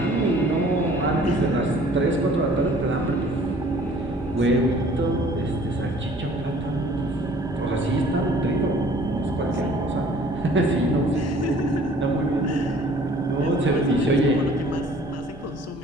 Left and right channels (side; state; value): both; normal; correlation 0.53